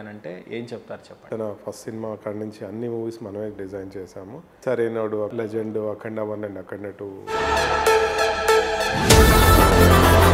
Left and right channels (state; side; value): identical; both; correlation 1.00